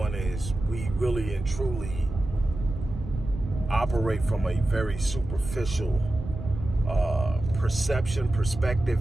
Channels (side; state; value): right; noise; rumble, 9 dB below the sound